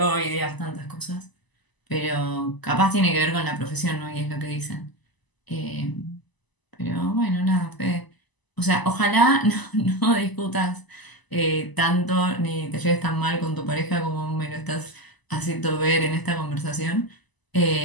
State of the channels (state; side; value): late; right; 1.0 ms